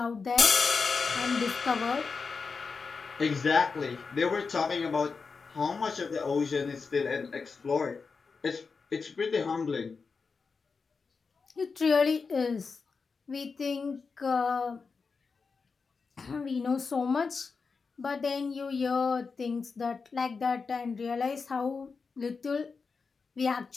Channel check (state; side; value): quieter; right; 4.9 dB